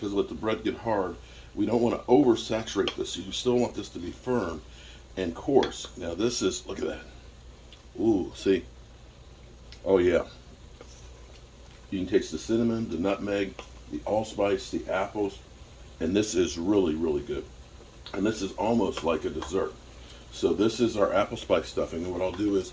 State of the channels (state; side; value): identical; both; correlation 1.00